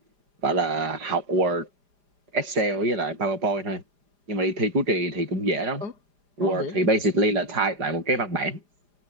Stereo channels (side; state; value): left; late; 4.9 ms